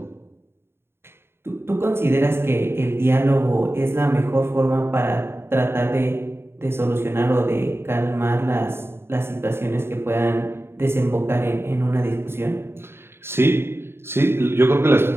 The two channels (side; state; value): left; late; 0.11 ms